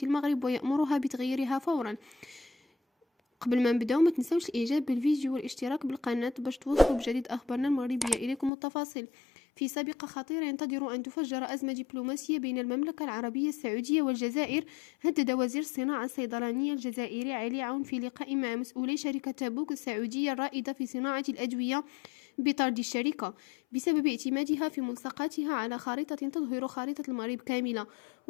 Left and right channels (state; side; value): drops out; right; at 8.5 s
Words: المغرب ويأمرها بتغييرها فورا. قبل ما نبداو ما تنسوش الاعجاب بالفيديو والاشتراك بالقناة باش توصلوا بجديد اخبارنا المغربية اليكم التفاصيل. في سابقة خطيرة ينتظر ان تفجر ازمة دبلوماسية بين المملكة العربية السعودية والجزائر. هدد وزير الصناعة الصيدلانية الجزائري علي عون في لقاء مع مسؤولي شركة تابوك السعودية الرائدة في صناعة الأدوية بطرد الشركة بسبب اعتمادها في ملصقاتها على خارطة تظهر خارطة المغرب كاملة.